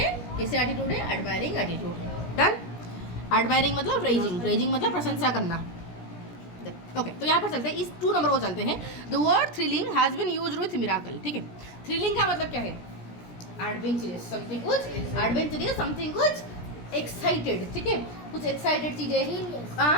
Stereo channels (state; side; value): late; right; 17 ms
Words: कैसे एटीट्यूड है, एडमायरिंग एटीट्यूड। डन। एडमायरिंग मतलब प्रेजिंग मतलब प्रशंसा करना। ओके, तो यहाँ पर चलते हैं, इस 2 नंबर को चलते हैं। The word thrilling has been used with miracle, ठीक है। थ्रिलिंग का मतलब क्या है, एडवेंचरस, समथिंग कुछ एक्साइटेड, ठीक है, कुछ एक्साइटेड चीजें,